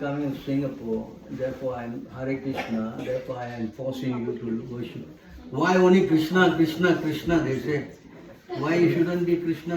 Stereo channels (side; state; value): both; identical; correlation 1.00